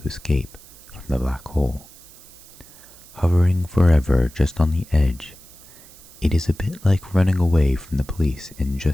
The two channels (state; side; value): noise; right; hiss, 22 dB below the sound